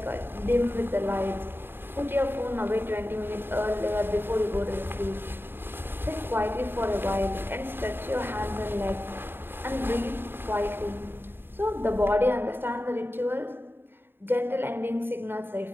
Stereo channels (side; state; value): left; late; 0.10 ms